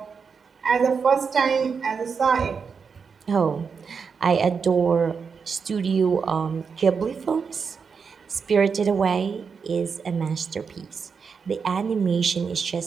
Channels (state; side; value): quieter; left; 5.8 dB